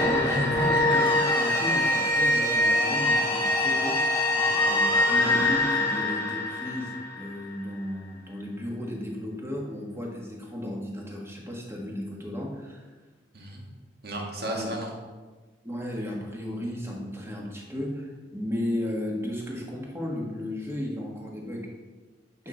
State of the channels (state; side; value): normal; both; correlation 0.47